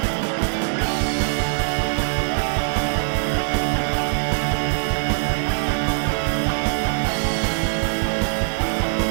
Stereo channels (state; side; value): silent; left; digital silence